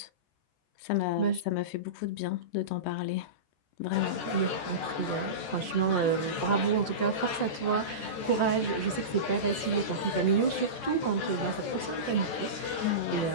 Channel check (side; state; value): right; late; 14 ms